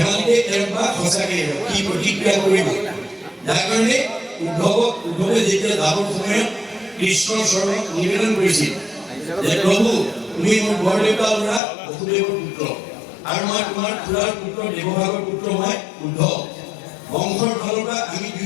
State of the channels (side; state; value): right; drops out; at 11.6 s